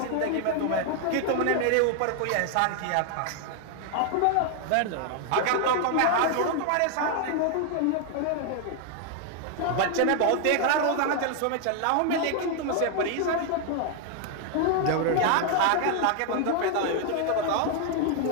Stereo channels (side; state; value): both; different; correlation 0.00